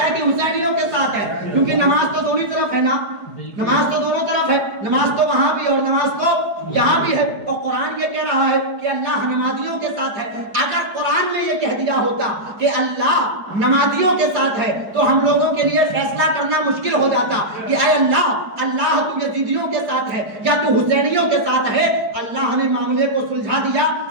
ہے کہ حسینیوں کے ساتھ ہے. کیونکہ نماز تو دونوں طرف ہے نا، نماز تو دونوں طرف ہے، نماز تو وہاں بھی اور نماز تو یہاں بھی ہے. اور قرآن یہ کہہ رہا ہے کہ اللہ نمازیوں کے ساتھ ہے. اگر قرآن میں یہ کہہ دیا ہوتا کہ اللہ نمازیوں کے ساتھ ہے تو ہم لوگوں کے لیے فیصلہ کرنا مشکل ہو جاتا کہ اے اللہ تو یزیدیوں کے ساتھ ہے یا تو حسینیوں کے ساتھ ہے. اللہ نے معاملے کو سلجھا دیا،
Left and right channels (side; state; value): left; late; 4.9 ms